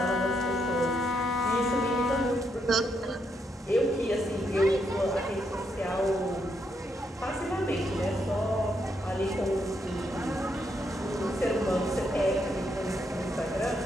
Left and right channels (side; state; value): both; normal; correlation 0.78